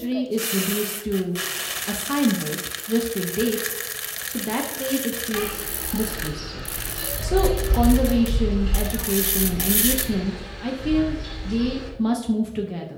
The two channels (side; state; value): both; identical; correlation 1.00